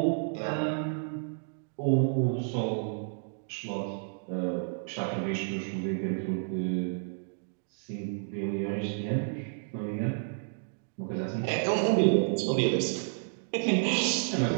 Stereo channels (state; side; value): silent; left; digital silence